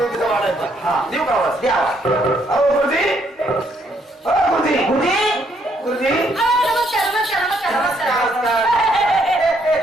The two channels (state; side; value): normal; both; correlation 0.71